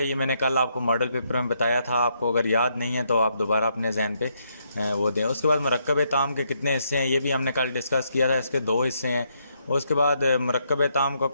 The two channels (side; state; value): both; inverted; correlation -0.76